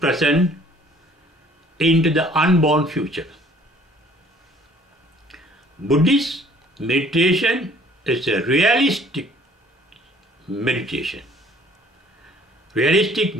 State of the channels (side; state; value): both; normal; correlation 0.56